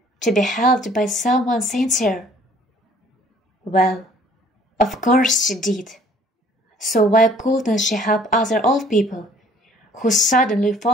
to be helped by someone sincere? Well, of course she did. So why couldn't she help other old people who suddenly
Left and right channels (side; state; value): both; normal; correlation 0.56